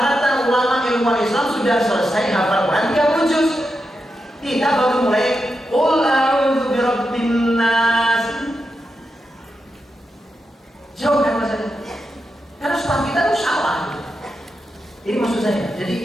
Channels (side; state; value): both; normal; correlation 0.87